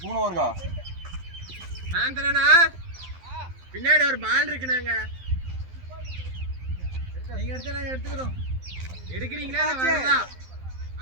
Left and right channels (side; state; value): left; late; 12 ms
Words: 3 ஓவர்க்கா ஆந்தனனா பின்னாடி ஒரு பால் இருக்குனாங்க நீங்க எடுத்து நாங்க எடுத்துக்கிறோம் எடுக்கிறீங்களா இல்ல வரதா